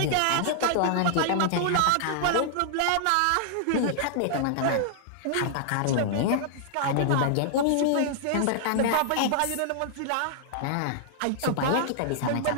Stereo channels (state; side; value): different; both; correlation -0.01